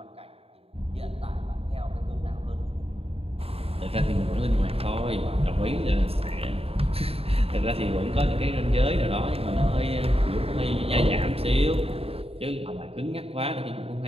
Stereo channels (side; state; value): left; late; 0.28 ms